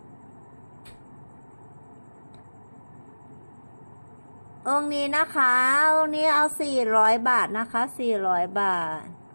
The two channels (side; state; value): both; inverted; correlation -1.00